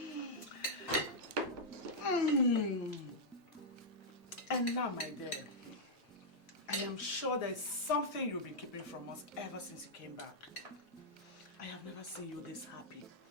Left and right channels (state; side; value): normal; both; correlation -0.07